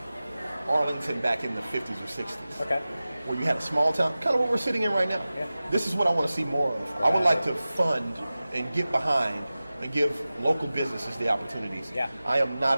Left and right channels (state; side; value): inverted; both; correlation -0.96